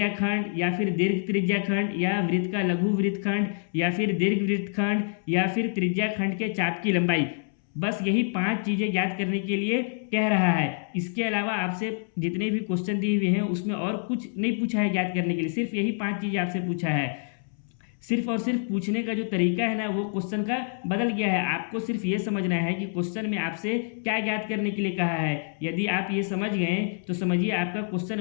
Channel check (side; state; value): right; silent; 60 dB below the other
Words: या फिर दीर्घ त्रिज्याखंड या वृत्त का लघु वृत्तखंड या फिर दीर्घ वृत्तखंड या फिर त्रिज्याखंड के चाप की लंबाई, बस यही 5 चीज़ें ज्ञात करने के लिए कह रहा है। इसके अलावा आपसे जितने भी क्वेश्चन दिए हुए हैं उसमें और कुछ नहीं पूछा है ज्ञात करने के लिए, सिर्फ यही 5 चीज़ें आपसे पूछा है। सिर्फ और सिर्फ पूछने का जो तरीका है ना वो क्वेश्चन का बदल गया है। आपको सिर्फ ये समझना है कि क्वेश्चन में आपसे क्या ज्ञात करने के लिए कहा है। यदि आप ये समझ गए तो समझिए आपका क्वेश्चन